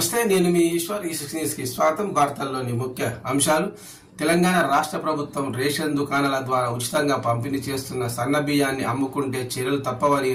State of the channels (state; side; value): identical; both; correlation 1.00